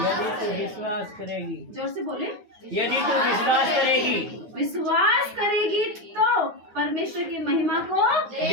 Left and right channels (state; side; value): late; left; 9.4 ms